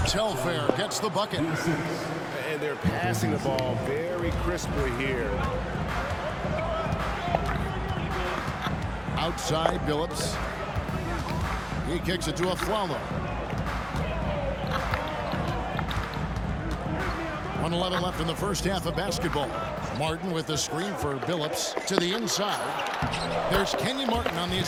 Telfair gets the bucket. And they're passing the ball very crisply here. Outside Billups. He kicks it to Afflalo. 1:11 left in the first half of basketball. Martin with the screen for Billups to the inside. There's Kenyon Martin on the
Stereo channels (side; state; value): both; identical; correlation 1.00